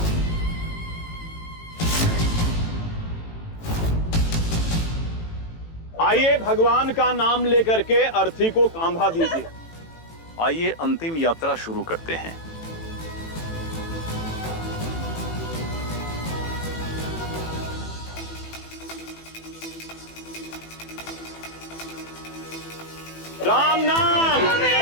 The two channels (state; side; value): late; right; 18 ms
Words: आइए भगवान का नाम लेकर के अर्थी को कांधा दीजिए। आइए अंतिम यात्रा शुरू करते हैं। राम नाम,